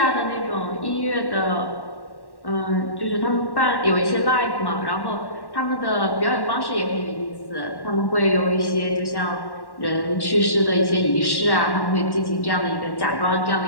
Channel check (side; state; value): right; late; 1.1 ms